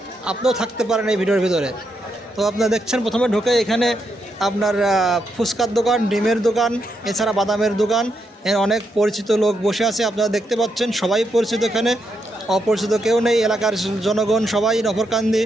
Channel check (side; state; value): both; normal; correlation 0.81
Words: আপনিও থাকতে পারেন এই ভিডিওর ভিতরে। তো আপনারা দেখছেন প্রথমে ঢুকে এখানে আপনার ফুচকার দোকান, ডিমের দোকান, এছাড়া বাদামের দোকান, অনেক পরিচিত লোক বসে আছে আপনারা দেখতে পাচ্ছেন। সবাই পরিচিত, এখানে অপরিচিত কেউ নেই। এলাকার জনগণ সবাই নফরকান্দি